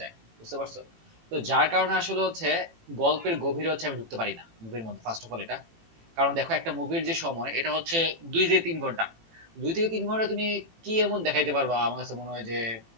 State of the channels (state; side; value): late; left; 18 ms